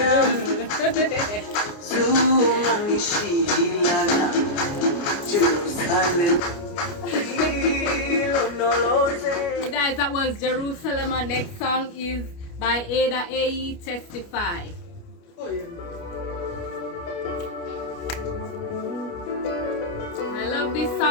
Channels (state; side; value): late; right; 29 ms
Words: zumanishilana, Jerusalem, ilondoloze. So guys, that was Jerusalem. Our next song is by Ada AE, Testify. I love this